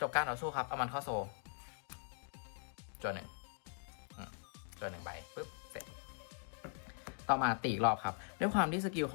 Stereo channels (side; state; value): right; silent; digital silence